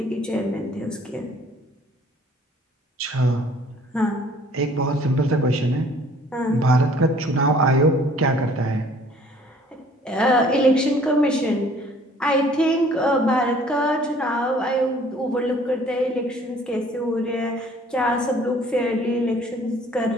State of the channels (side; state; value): both; normal; correlation 0.55